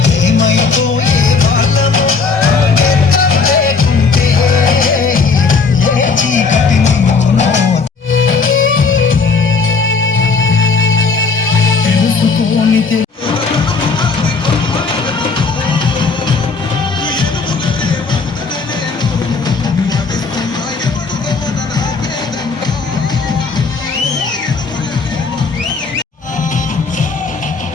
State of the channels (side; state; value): right; quieter; 4.6 dB